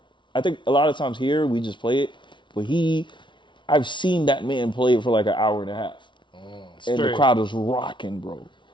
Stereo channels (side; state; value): right; late; 0.24 ms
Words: I think a lot of times here we just play it, but I've seen that man play it for like an hour and a half. And the crowd is rocking, bro.